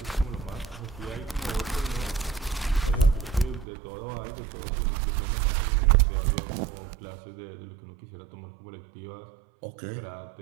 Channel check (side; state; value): left; drops out; at 3.7 s